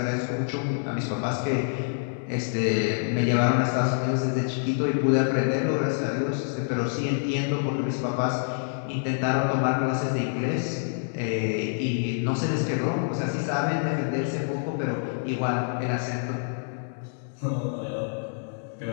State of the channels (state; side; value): silent; right; 60 dB below the other